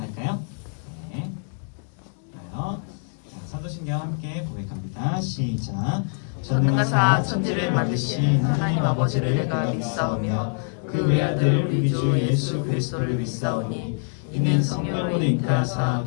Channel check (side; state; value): right; silent; 62 dB below the other